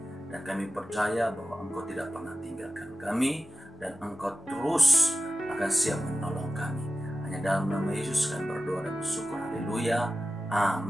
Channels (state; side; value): normal; both; correlation 0.95